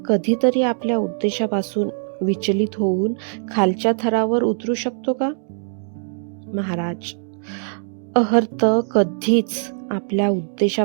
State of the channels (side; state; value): left; silent; 65 dB below the other